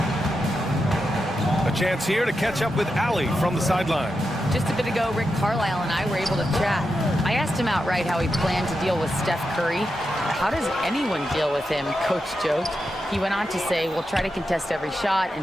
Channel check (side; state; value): both; normal; correlation 0.88